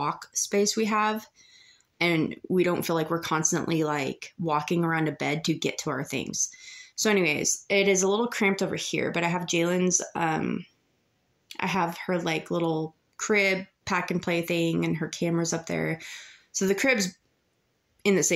space we have. And we don't feel like we're constantly like walking around a bed to get to our things. So anyways, it is a little cramped over here, but I have Jalen's, I have her like little crib pack and play thing and her camera's up there. So the crib's in the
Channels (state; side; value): identical; both; correlation 1.00